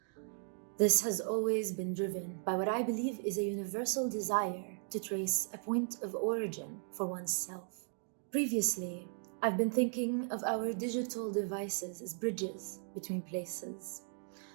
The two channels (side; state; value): left; silent; 53 dB below the other